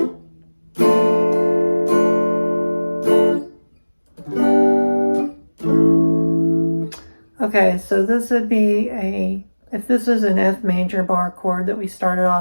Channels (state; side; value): inverted; both; correlation -1.00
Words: okay, so this would be if this is an F major bar chord that we started